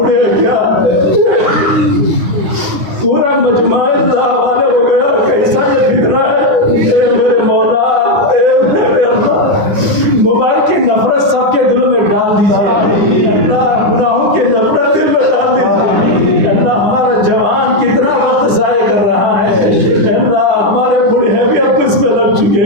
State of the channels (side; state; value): left; late; 10 ms